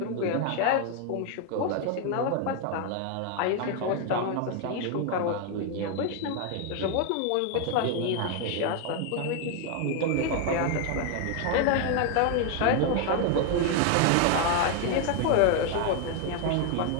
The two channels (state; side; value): different; both; correlation 0.01